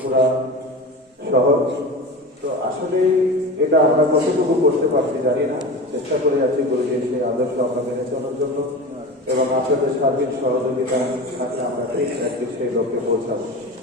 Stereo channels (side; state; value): both; normal; correlation 0.30